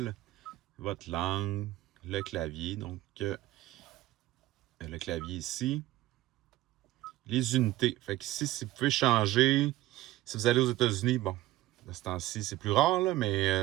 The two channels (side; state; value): left; quieter; 16.0 dB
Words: votre langue, le clavier. Donc, le clavier ici. Les unités. Fait que ici, si vous pouvez changer, si vous allez aux États-Unis, bon, de ce temps-ci, c'est plus rare, là,